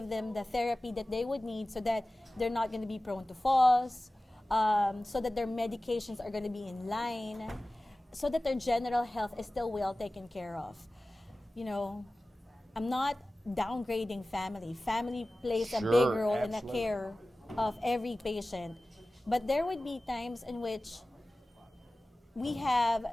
them the therapy that they would need so that they're not going to be prone to falls, so that their medications are going to be in line, so that their general health is still well taken care of. I'm not downgrading family. Family plays a big role in the care of every patient. But there would be times in which we have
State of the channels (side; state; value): both; normal; correlation 0.97